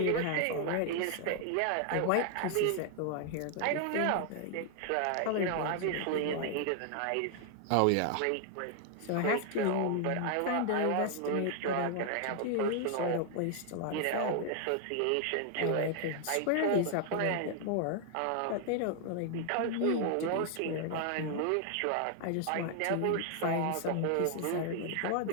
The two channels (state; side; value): different; both; correlation 0.00